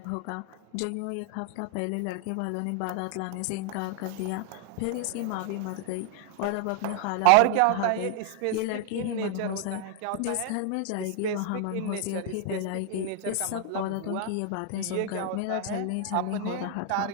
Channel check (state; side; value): different; both; correlation 0.00